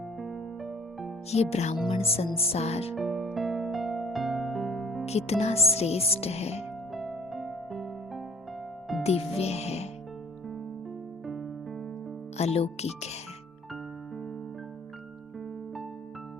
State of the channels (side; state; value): both; normal; correlation 0.55